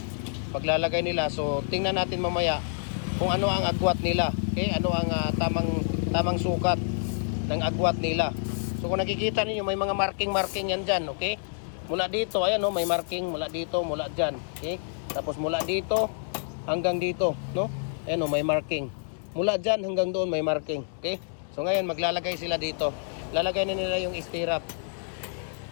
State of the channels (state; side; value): silent; right; digital silence